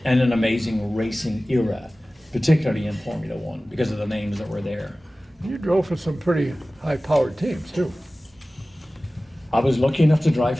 and an amazing racing era, particularly in Formula 1, because of the names that were there. You drove for some pretty high-powered teams, too. I was lucky enough to drive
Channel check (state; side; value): normal; both; correlation 0.97